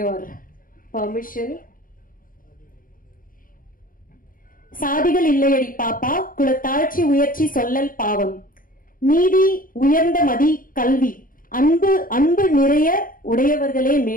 permission. சாதிகள் இல்லையடி பாப்பா, குலத்தாழ்ச்சி உயர்ச்சி சொல்லல் பாவம், நீதி உயர்ந்த மதி கல்வி, அன்பு அன்பு நிறைய உடையவர்களே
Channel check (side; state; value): right; late; 0.40 ms